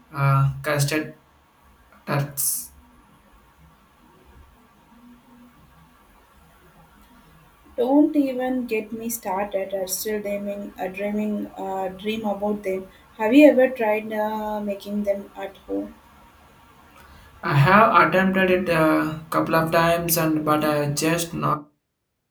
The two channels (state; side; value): identical; both; correlation 1.00